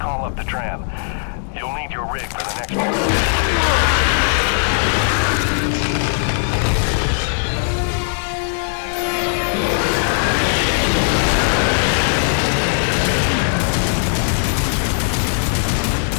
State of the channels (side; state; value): right; silent; 67 dB below the other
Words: call up the tram. You'll need your rig for the next one.